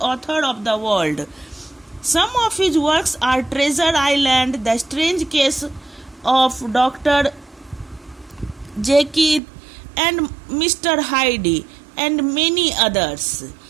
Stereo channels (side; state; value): left; drops out; at 9.4 s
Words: authors of the world. Some of his works are Treasure Island, The Strange Case of Dr. Jekyll and Mr. Hyde, and many others.